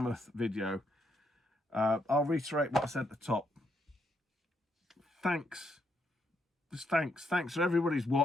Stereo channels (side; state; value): both; normal; correlation 0.77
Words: video, I'll reiterate what I said at the top. Thanks. Just thanks. Thanks for everybody who's